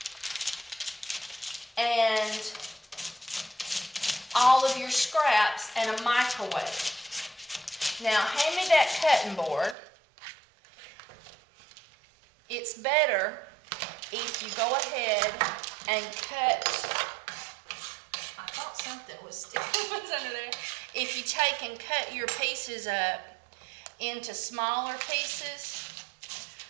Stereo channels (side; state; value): left; drops out; at 9.8 s